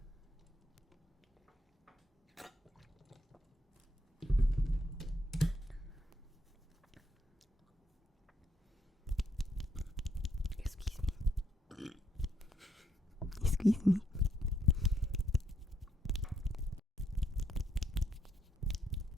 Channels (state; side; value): normal; both; correlation 0.75